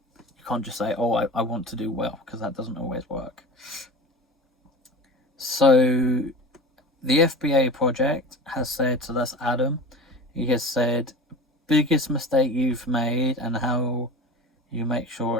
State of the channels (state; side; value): normal; both; correlation 0.33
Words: can't just say, oh, I want to do well, because that doesn't always work. So the FBA project has said, so that's Adam, he has said, biggest mistake you've made and how you make sure